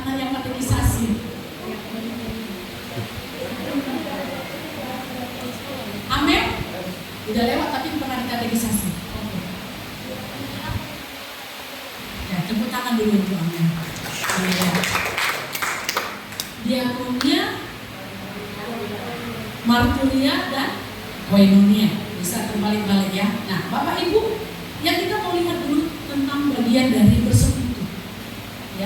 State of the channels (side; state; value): both; identical; correlation 1.00